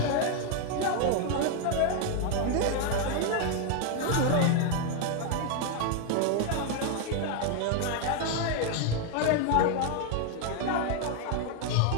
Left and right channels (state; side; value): different; both; correlation 0.01